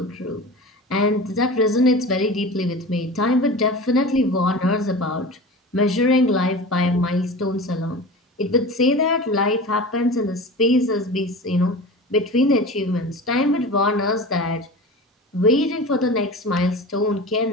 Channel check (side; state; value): both; normal; correlation 0.33